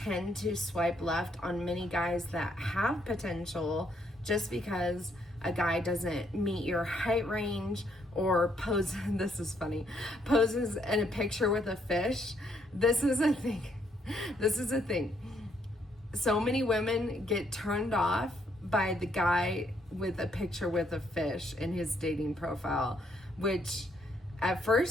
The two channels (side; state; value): both; normal; correlation 0.71